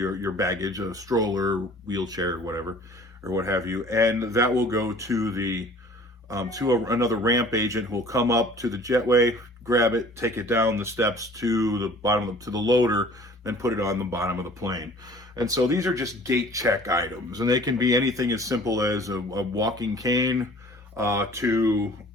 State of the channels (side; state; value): both; normal; correlation 0.49